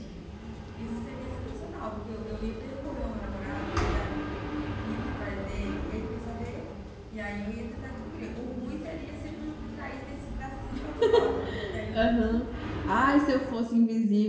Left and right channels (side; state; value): both; identical; correlation 1.00